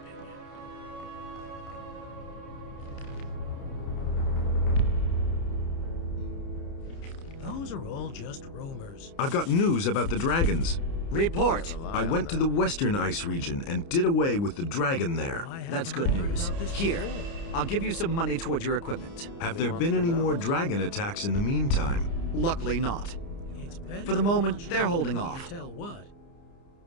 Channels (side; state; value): right; late; 30 ms